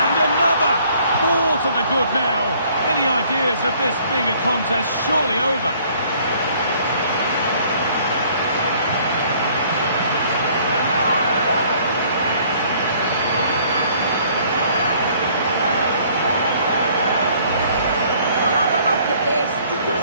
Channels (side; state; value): both; inverted; correlation -0.59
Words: another! 4 to the good now. Any ideas of this being a contest surely over?